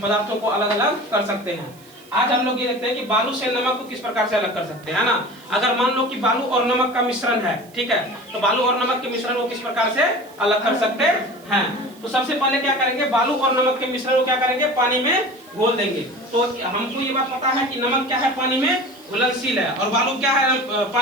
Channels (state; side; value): noise; right; hiss, 25 dB below the sound